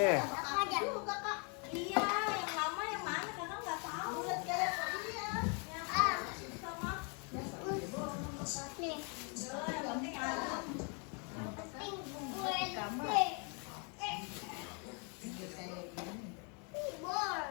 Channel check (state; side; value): quieter; right; 36.2 dB